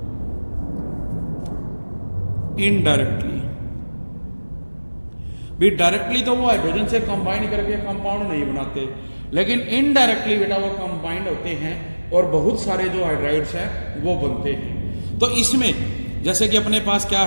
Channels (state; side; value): inverted; both; correlation -1.00